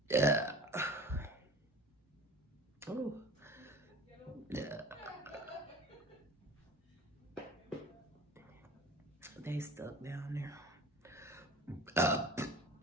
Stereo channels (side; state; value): both; normal; correlation 0.41